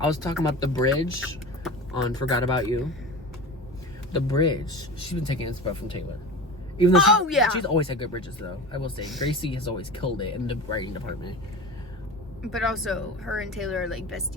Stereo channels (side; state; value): both; normal; correlation 0.31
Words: was talking about the bridge on "Forgot About You." The bridge. She's been taking inspiration from Taylor. Even though she's always had good bridges, though. I will say, Gracie has always killed it in the writing department. But also, her and Taylor are like